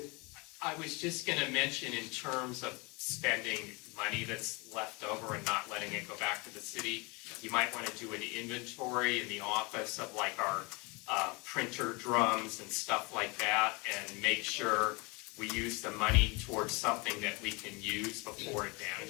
I was just gonna mention in terms of spending money that's left over and not letting it go back to the city, you might wanna do an inventory in the office of like our printer drums and stuff like that, and make sure we use the money towards something that we can use before it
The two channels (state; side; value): quieter; right; 27.9 dB